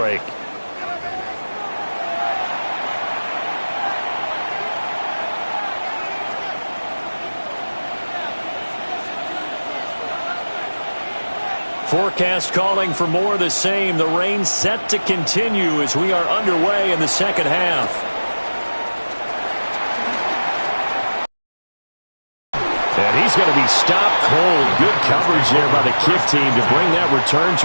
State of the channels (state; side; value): inverted; both; correlation -1.00